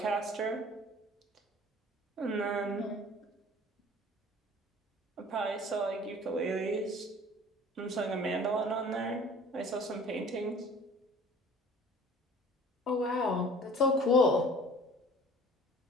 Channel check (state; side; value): normal; both; correlation 0.47